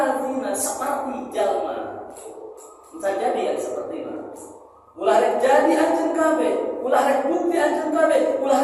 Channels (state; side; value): identical; both; correlation 1.00